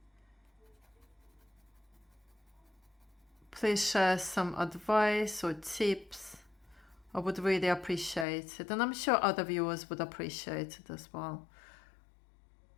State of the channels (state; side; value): drops out; right; at 8.2 s